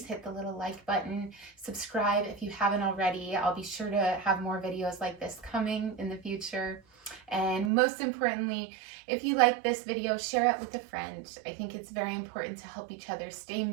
hit the little like button, subscribe if you haven't already. I'll be sure to have more videos like this coming in the future. And most importantly, if you like this video, share it with a friend. I think it's very important to help each other stay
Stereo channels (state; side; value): drops out; left; at 7.7 s